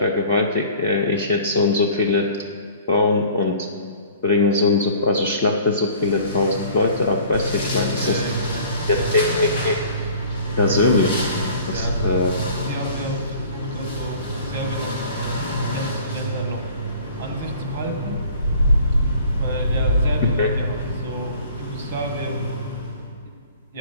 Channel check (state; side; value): inverted; both; correlation -0.48